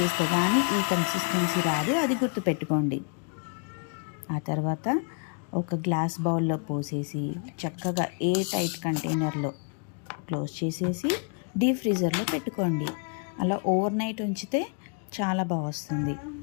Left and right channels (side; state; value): right; quieter; 37.3 dB